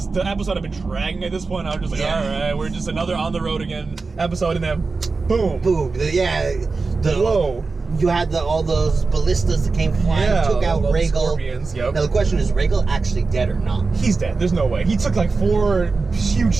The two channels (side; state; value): left; quieter; 4.1 dB